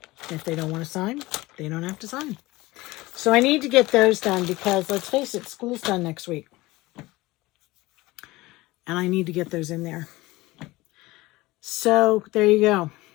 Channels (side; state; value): right; quieter; 20.0 dB